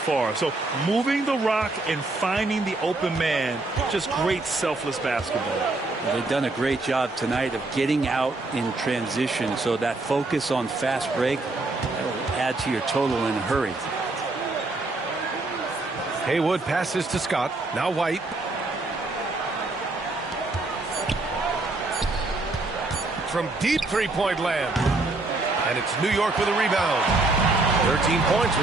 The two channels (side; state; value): left; quieter; 3.1 dB